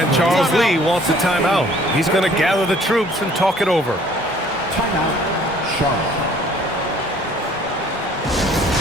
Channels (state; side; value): normal; both; correlation 0.56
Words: Charles Lee wants a timeout. He's going to gather the troops and talk it over. Timeout, Charlotte.